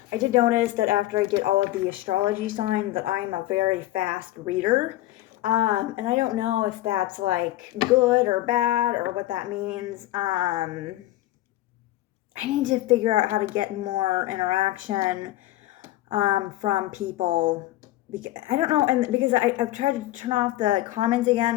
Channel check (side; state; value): right; quieter; 16.0 dB